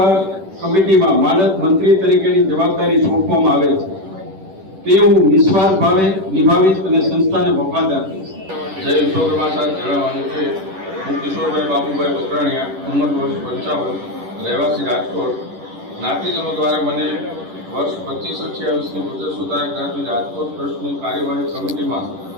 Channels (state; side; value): late; left; 10 ms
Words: કમિટીમાં માનદ મંત્રી તરીકેની જવાબદારી સોંપવામાં આવેલ છે તે હું નિસ્વાર્થ ભાવે નિભાવીશ અને સંસ્થાને વફાદાર રહીશ. જય વિશ્વકર્મા સાહેબ જણાવવાનું છે હું કિશોરભાઈ બાબુભાઈ બકરાણીયા ઉંમર વર્ષ 55 રહેવાસી રાજકોટ જ્ઞાતિજનો દ્વારા મને વર્ષ 25-28ની ગુજર સુતાર જ્ઞાતિ રાજકોટ ટ્રસ્ટની કાર્યવાહી કમિટીમાં